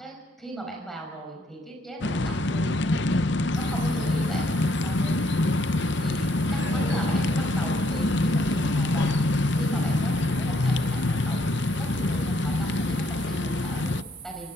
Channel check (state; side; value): normal; both; correlation 0.71